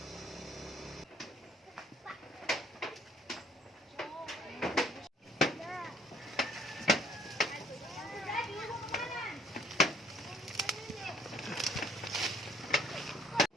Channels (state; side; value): normal; both; correlation 0.60